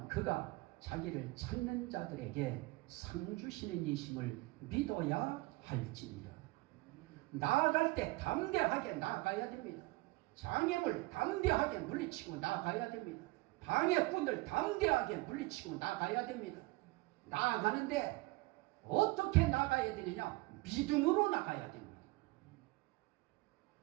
그가 자기를 찾는 자들에게 상 주시는 이심을 믿어야 할지니라. 나아갈 때 담대하게 나아가야 됩니다. 장애물 담대하게 물리치고 나아가야 됩니다. 방해꾼들 담대하게 물리치고 나아가야 됩니다. 나아가는데 어떻게 나가야 되느냐? 믿음으로 나가야 됩니다.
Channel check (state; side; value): quieter; left; 22.5 dB